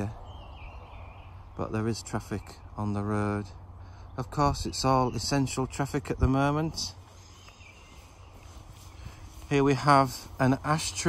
but there is traffic on the road. Of course, it's all essential traffic at the moment. Here we have an ash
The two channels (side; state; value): both; identical; correlation 1.00